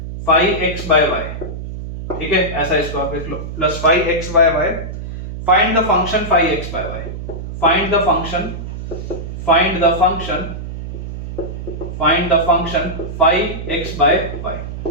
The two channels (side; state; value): right; noise; hum, 8 dB below the sound